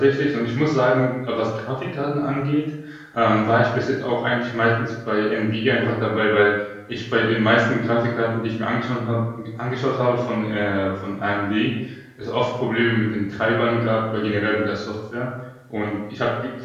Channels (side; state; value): both; identical; correlation 1.00